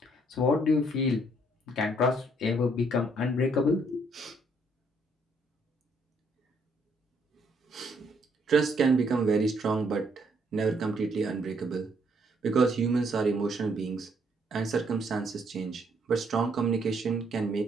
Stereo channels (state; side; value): normal; both; correlation 0.69